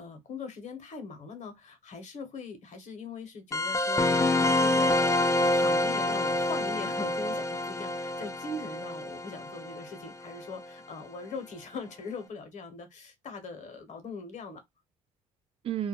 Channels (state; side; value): normal; both; correlation 0.55